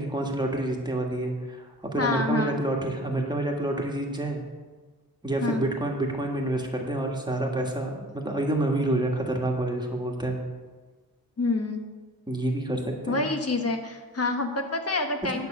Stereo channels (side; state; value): both; normal; correlation 0.44